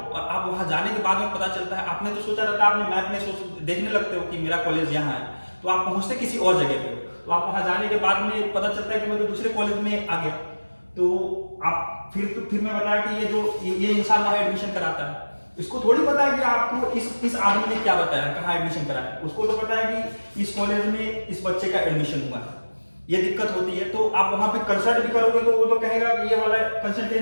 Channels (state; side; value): inverted; both; correlation -1.00